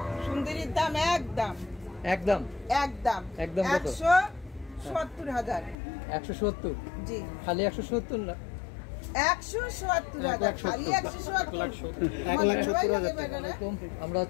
সুন্দরীর দাম একদম একদম একদম একদম 170,000। 170? জি, খালি 170 না, 170,000 খালি 170,000। আমরা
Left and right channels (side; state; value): right; drops out; at 5.8 s